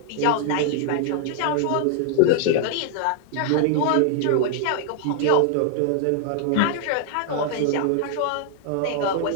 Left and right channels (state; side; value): different; both; correlation 0.00